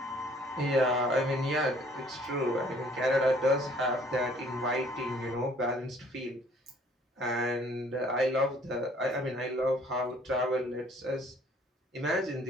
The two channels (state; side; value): normal; both; correlation 0.58